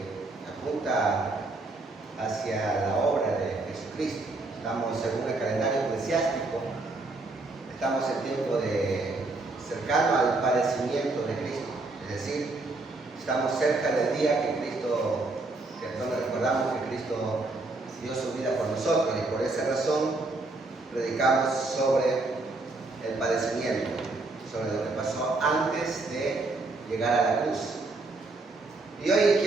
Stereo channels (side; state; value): left; quieter; 3.2 dB